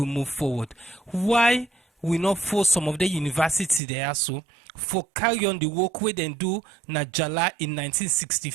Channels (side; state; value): left; drops out; at 3.8 s